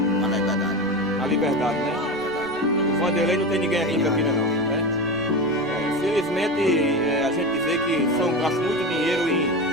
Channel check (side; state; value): right; noise; rumble, 26 dB below the sound